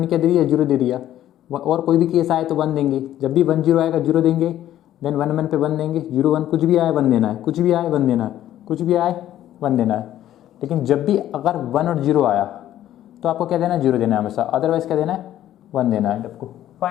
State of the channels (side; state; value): right; quieter; 12.4 dB